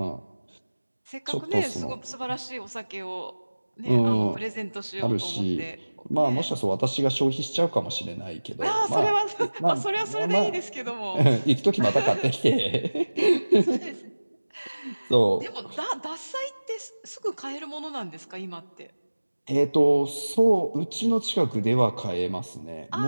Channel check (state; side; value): inverted; both; correlation -1.00